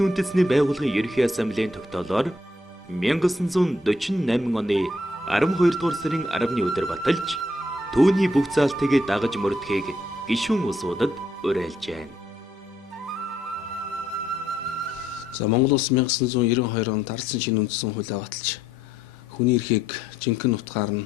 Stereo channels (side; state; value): both; normal; correlation 0.72